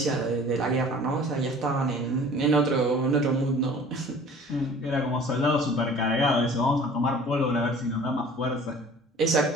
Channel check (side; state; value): both; normal; correlation 0.47